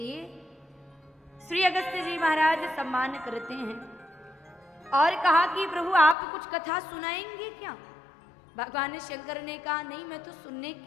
श्री अगस्त्य जी महाराज सम्मान करते हैं और कहा कि प्रभु आप कुछ कथा सुनाएंगे क्या? भगवान शंकर ने कहा नहीं, मैं तो सुनने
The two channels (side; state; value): right; drops out; at 6.2 s